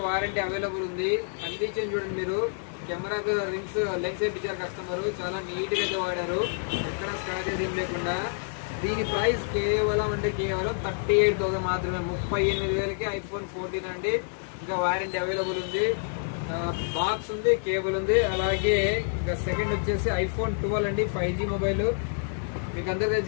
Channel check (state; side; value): silent; right; digital silence